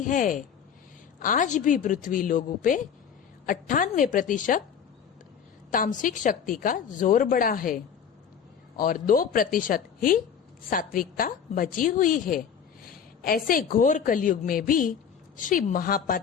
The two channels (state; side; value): quieter; right; 7.6 dB